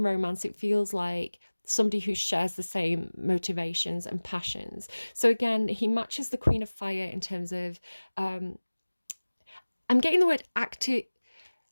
romance, it feels like somebody who shares the same motivations and passions. So again, he matches the Queen of Fire in terms of, I'm getting the word active.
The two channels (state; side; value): inverted; both; correlation -1.00